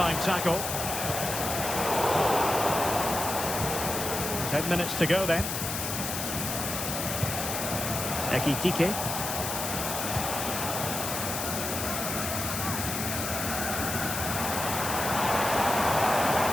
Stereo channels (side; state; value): left; noise; hiss, 3 dB below the sound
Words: tackle. 10 minutes to go then. Ekitike.